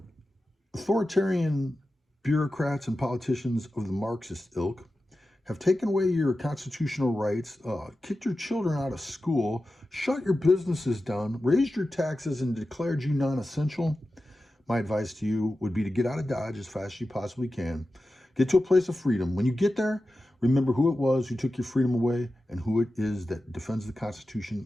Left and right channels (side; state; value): both; normal; correlation 0.93